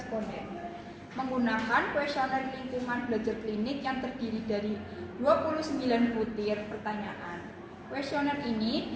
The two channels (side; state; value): both; identical; correlation 1.00